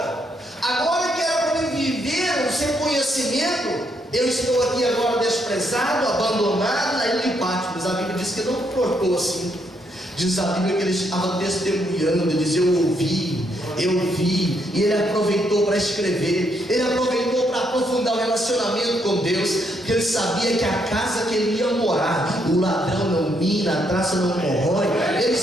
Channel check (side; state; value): both; normal; correlation 0.75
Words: agora que era para mim viver o seu conhecimento, eu estou aqui agora desprezado, abandonado na ilha de Patmos. A Bíblia diz que não portou assim. Diz a Bíblia que ele estava testemunhando, ele diz: eu ouvi, e ele aproveitou para escrever, ele aproveitou para aprofundar o relacionamento com Deus, porque ele sabia que a casa que ele ia morar, o ladrão não mina, a traça não corrói. Ele